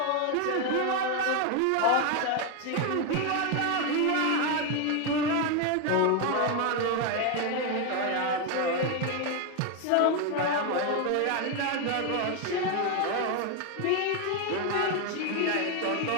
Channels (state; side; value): different; both; correlation 0.01